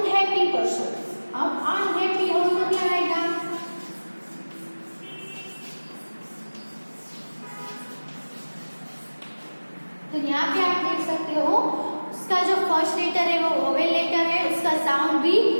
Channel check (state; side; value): inverted; both; correlation -1.00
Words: पर्सन। अब अनहैप्पी हो तो क्या आएगा, तो यहाँ पे आप देख सकते हो उसका जो फर्स्ट लेटर है वो वोवेल लेटर है, उसका साउंड भी